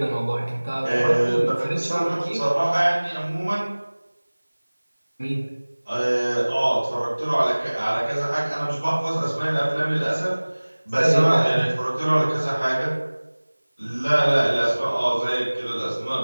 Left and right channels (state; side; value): inverted; both; correlation -1.00